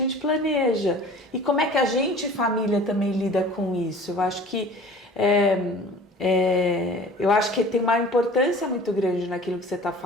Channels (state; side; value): normal; both; correlation 0.44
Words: planeja. E como é que a gente, família, também lida com isso? Eu acho que tem uma importância muito grande naquilo que você está